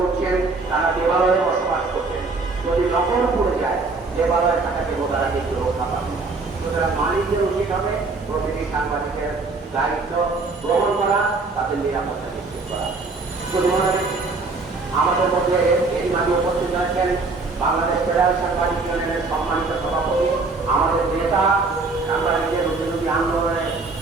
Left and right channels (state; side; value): quieter; left; 3.8 dB